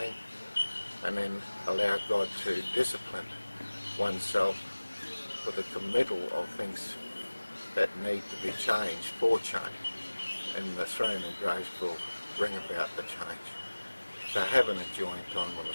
and then allow God to discipline oneself with a committal of things that need to be changed for change, and the throne of grace will bring about the change. So have an enjoying time on the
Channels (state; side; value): inverted; both; correlation -1.00